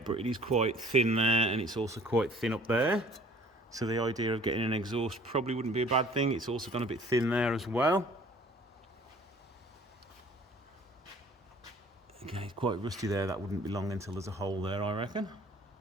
but it is quite thin there, and it's also quite thin up there. So the idea of getting an exhaust probably wouldn't be a bad thing. It's also gone a bit thin there as well. Okay, it's quite rusty there. That wouldn't be long until there's a hole there, I reckon.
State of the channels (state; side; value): normal; both; correlation 0.52